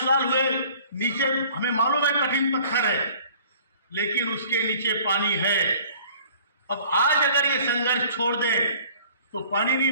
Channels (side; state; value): both; inverted; correlation -0.52